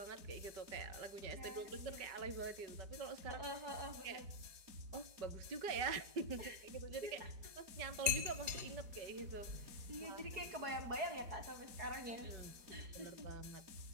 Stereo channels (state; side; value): late; left; 4.7 ms